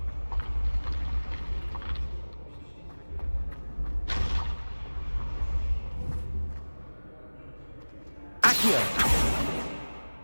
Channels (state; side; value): inverted; both; correlation -1.00